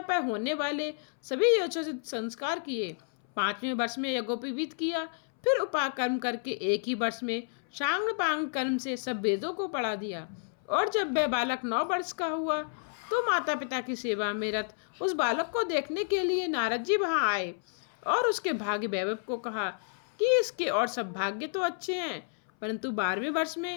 पर होने वाले सभी यथोचित संस्कार किए। 5वें वर्ष में यज्ञोपवीत किया। फिर उपाकर्म करके 1 ही वर्ष में शांग पांग कर्म से सब वेदों को पढ़ा दिया। और जब वह बालक 9 वर्ष का हुआ तो माता पिता की सेवा में रत उस बालक को देखने के लिए नारद जी वहाँ आए और उसके भाग्य वैभव को कहा कि इसके और सब भाग्य तो अच्छे हैं, परंतु 12वें वर्ष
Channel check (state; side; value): silent; right; 57 dB below the other